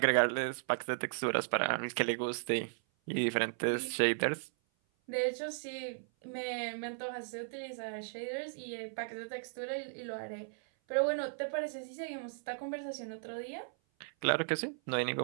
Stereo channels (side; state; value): left; silent; 54 dB below the other